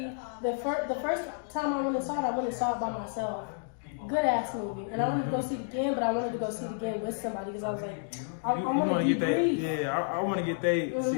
the first time I went and saw it by myself. Good ass movie, and I wanted to go see it again, but I wanted to go see it again with somebody because I was like, I want to get that. Yeah, I want to get they.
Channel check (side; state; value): right; silent; digital silence